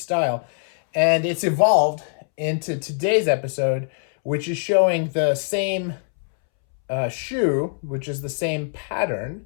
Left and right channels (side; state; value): right; silent; 64 dB below the other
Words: and it's evolved into today's episode, which is showing the same shoe, which is the same pattern,